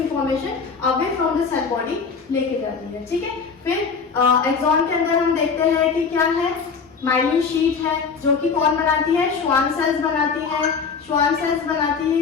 away from the cell body लेके जाती है। ठीक है, फिर एक्सॉन के अंदर हम देखते हैं कि क्या है, माइलिन शीट है, जो कि कौन बनाती है, श्वान सेल्स बनाती है। श्वान सेल्स बनाती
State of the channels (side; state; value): right; quieter; 5.5 dB